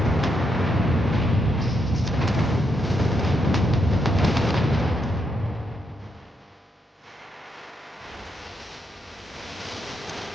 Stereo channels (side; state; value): both; normal; correlation 0.79